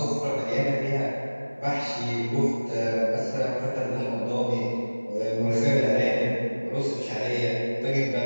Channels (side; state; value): both; inverted; correlation -1.00